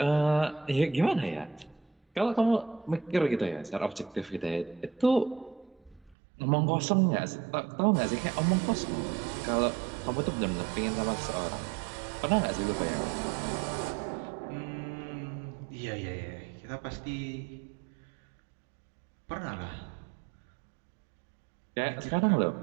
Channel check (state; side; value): drops out; left; at 6.2 s